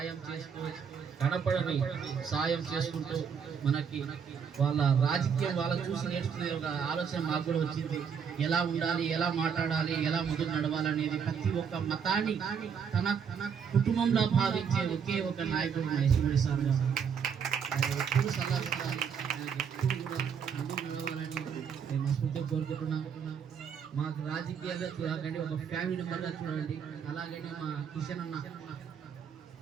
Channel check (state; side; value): quieter; left; 7.0 dB